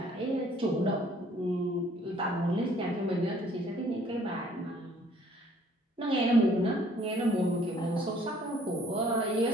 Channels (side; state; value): both; normal; correlation 0.59